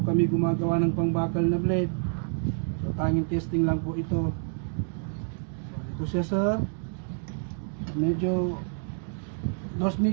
kami gumagawa ng pangbakal na blade. So tanging testing lang po ito. So ito siya sir. So, medyo dos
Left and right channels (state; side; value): silent; left; 59 dB below the other